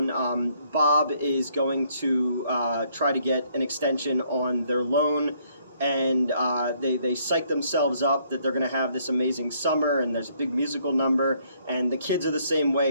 Bob is going to try to get an extension on their loan, and they psych themselves up that they're going to have this amazing summer, and there's a big musical number, and the kids are the same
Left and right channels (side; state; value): both; inverted; correlation -0.68